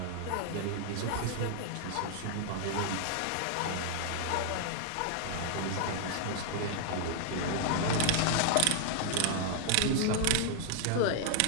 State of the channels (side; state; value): both; different; correlation 0.00